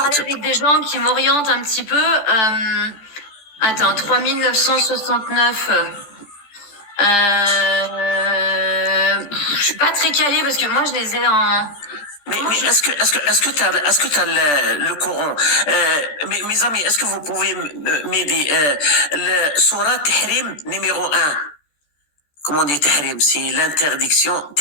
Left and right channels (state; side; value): late; right; 14 ms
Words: avec des gens qui m'orientent un petit peu. Attends, 3969. Je suis pas très calée parce que moi je les ai en... Mais est-ce que t'as le Coran? Mes amis, est-ce que vous pouvez m'aider? Le Surah Tahrim numéro 1. Comment on dit Tahrim? C'est l'interdiction.